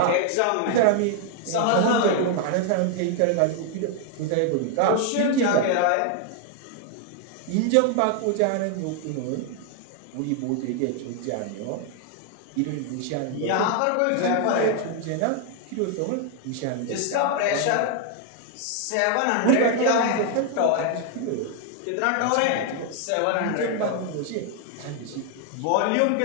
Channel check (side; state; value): both; different; correlation 0.00